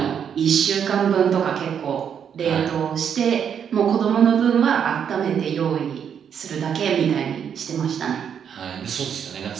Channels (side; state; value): left; quieter; 8.0 dB